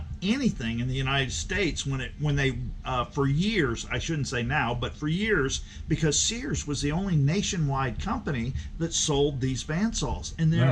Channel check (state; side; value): identical; both; correlation 1.00